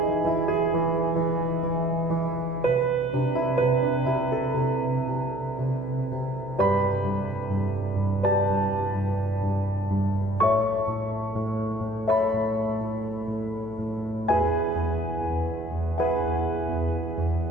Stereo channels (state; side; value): noise; right; hum, 16 dB below the sound